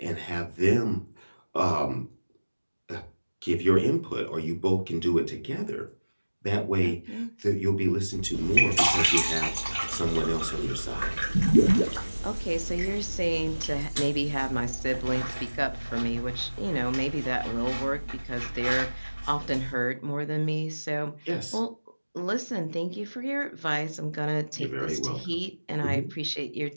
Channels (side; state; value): both; inverted; correlation -1.00